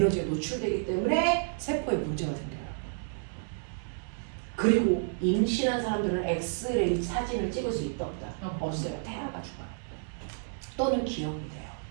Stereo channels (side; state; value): left; silent; digital silence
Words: 노출되기 때문에 세포에 문제가 생겨요. 그리고 임신한 사람들은 엑스레이 사진을 찍을 수 있다 없다? 없어요. 태아가 죽어요. 또는 기형이 돼요.